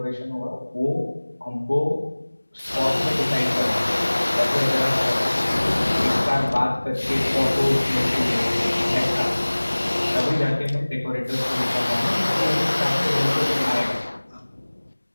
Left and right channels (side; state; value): both; inverted; correlation -1.00